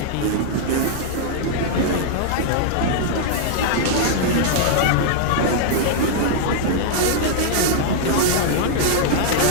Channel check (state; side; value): different; both; correlation -0.01